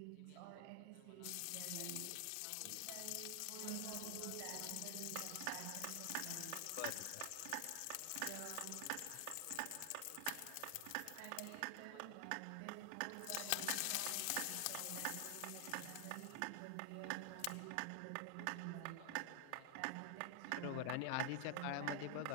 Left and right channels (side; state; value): both; different; correlation 0.00